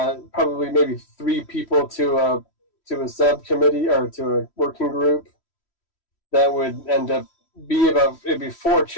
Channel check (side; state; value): right; late; 3.1 ms